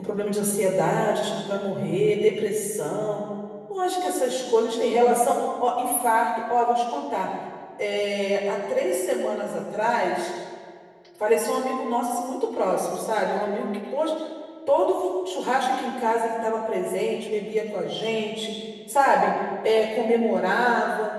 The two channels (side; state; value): both; identical; correlation 1.00